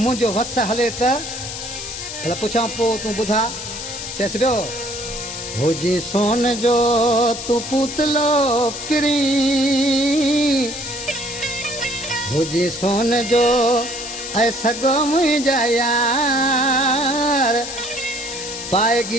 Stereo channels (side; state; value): left; noise; hiss, 8 dB below the sound